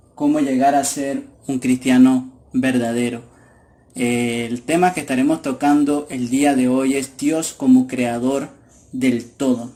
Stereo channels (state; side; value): identical; both; correlation 1.00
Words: cómo llegar a ser un cristiano verdadero. El tema que estaremos tocando el día de hoy es Dios como creador del